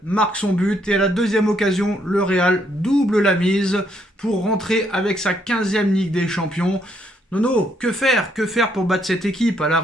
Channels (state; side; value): normal; both; correlation 0.72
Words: marque son but et à la deuxième occasion, le Real double la mise pour rentrer avec sa 15e Ligue des Champions. Nono, que faire? Que faire pour battre cette équipe? À